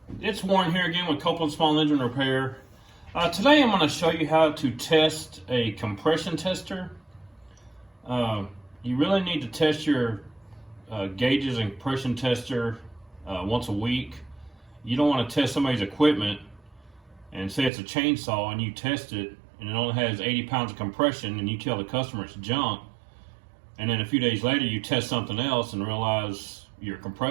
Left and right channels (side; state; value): left; drops out; at 17.7 s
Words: it's Warren here again with Copeland Small Engine Repair. Today I'm going to show you how to test a compression tester. You really need to test your gauges and compression tester once a week. You don't want to test somebody's equipment and say it's a chainsaw and you test it and it only has 80 pounds of compression and you tell the customer it's junk, and then a few days later you test something else and realize your